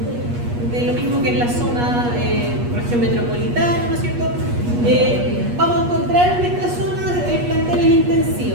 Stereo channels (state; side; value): late; left; 8.3 ms